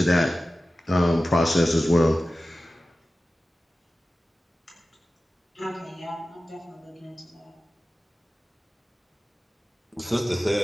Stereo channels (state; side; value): normal; both; correlation 0.95